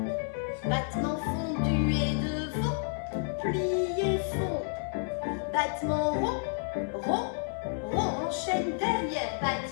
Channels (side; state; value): right; silent; 57 dB below the other